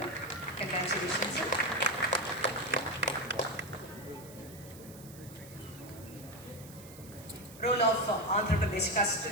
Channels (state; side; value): noise; right; hiss, 19 dB below the sound